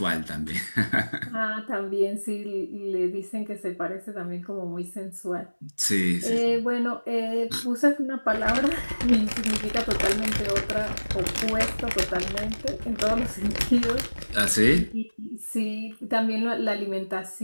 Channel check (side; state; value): both; inverted; correlation -1.00